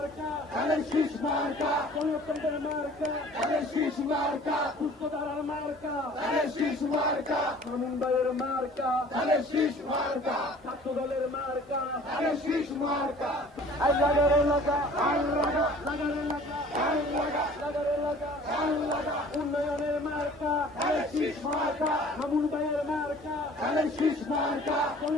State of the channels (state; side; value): normal; both; correlation 0.49